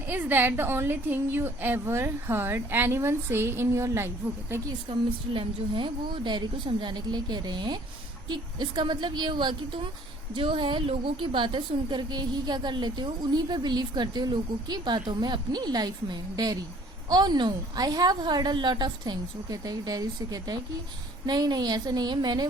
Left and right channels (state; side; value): normal; both; correlation 0.56